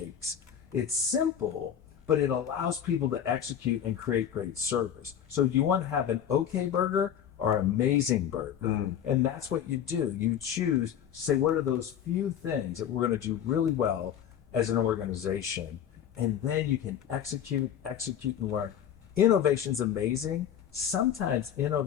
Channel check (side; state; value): right; quieter; 9.3 dB